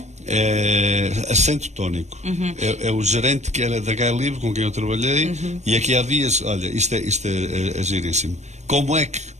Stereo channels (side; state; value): left; late; 0.33 ms